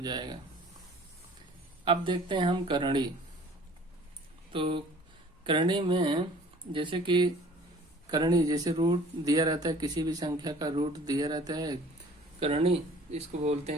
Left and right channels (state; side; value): normal; both; correlation 0.50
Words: जाएगा। अब देखते हैं हम करणी। तो करणी में जैसे कि करणी, जैसे रूट दिया रहता है, किसी भी संख्या का रूट दिया रहता है, करणी इसको बोलते